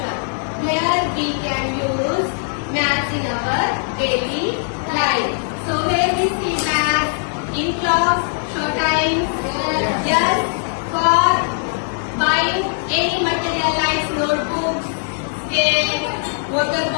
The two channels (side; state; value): right; silent; digital silence